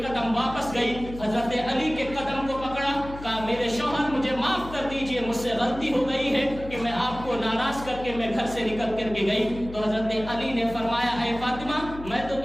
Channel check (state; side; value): noise; left; hum, 13 dB below the sound